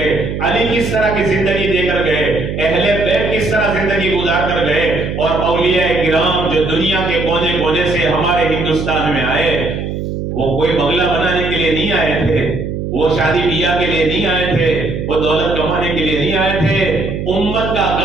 علی کس طرح کی زندگی دے کر گئے، اہل بیت کس طرح زندگی گزار کر گئے، اور اولیاء کرام جو دنیا کے کونے کونے سے ہمارے ہندوستان میں آئے، وہ کوئی بنگلہ بنانے کے لیے نہیں آئے تھے، وہ شادی بیاہ کے لیے نہیں آئے تھے، وہ دولت کمانے کے لیے نہیں آئے تھے، امت کا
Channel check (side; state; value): right; noise; hum, 4 dB below the sound